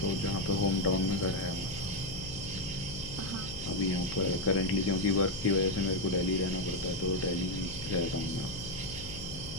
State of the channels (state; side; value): noise; left; hum, 11 dB below the sound